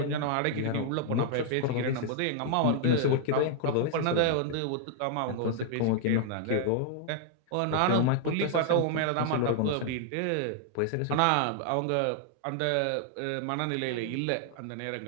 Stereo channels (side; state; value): both; different; correlation 0.00